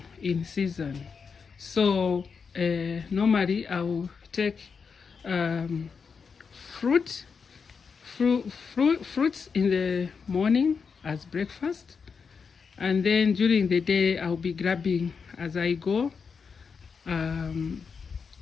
in season. So normally I will take fruits in the morning as breakfast, and then during the day I'll be grabbing as I go.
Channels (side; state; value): right; quieter; 5.7 dB